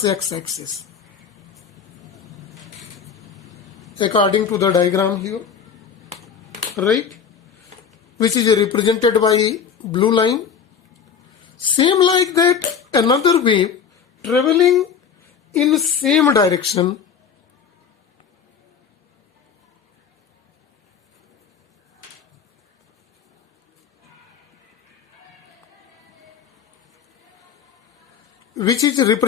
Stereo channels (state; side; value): quieter; right; 7.0 dB